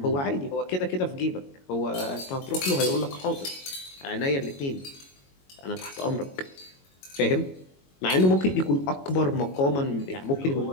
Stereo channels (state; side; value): late; right; 22 ms